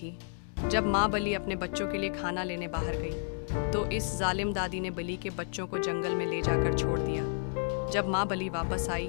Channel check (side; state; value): right; silent; 57 dB below the other